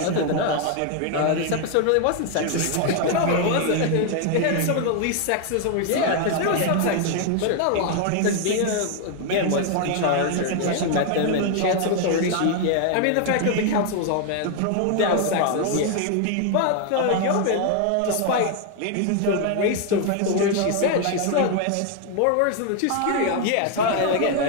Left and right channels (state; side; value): different; both; correlation 0.00